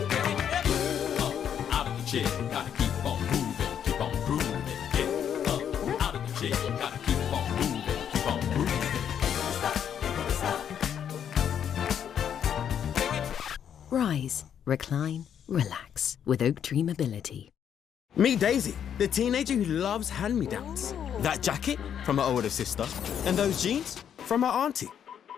Chair, gotta keep on moving, keep on grooving. Get up out of the chair, gotta keep on moving, keep on grooving. Rise, recline, relax with Oak Tree Mobility. Meet Daisy, the teenager who loves hand-me-downs. That jacket from her older sister, and those jeans from her auntie.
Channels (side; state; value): right; quieter; 8.8 dB